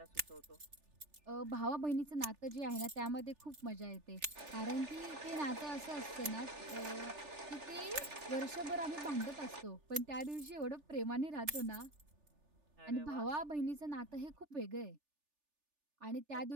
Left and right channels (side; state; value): left; late; 3.4 ms